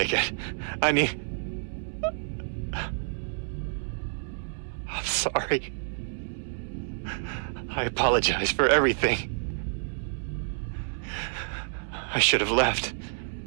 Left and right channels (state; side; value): silent; left; digital silence